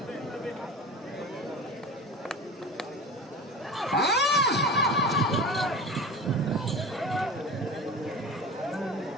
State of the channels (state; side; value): normal; both; correlation 0.33